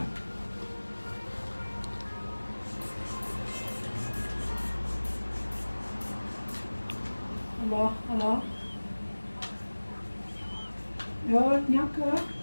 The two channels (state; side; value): inverted; both; correlation -1.00